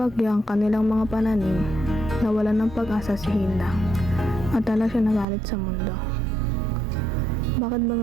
ang kanilang mga pananim, nawalan ng pag-asa si Hilda, at tala siya nagalit sa mundo. Bakit ba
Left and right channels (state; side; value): drops out; left; at 5.2 s